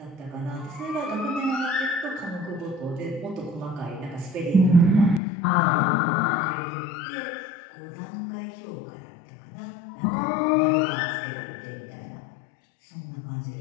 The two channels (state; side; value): drops out; right; at 5.2 s